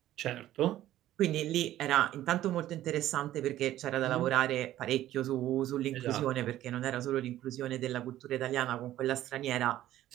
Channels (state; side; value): quieter; left; 13.6 dB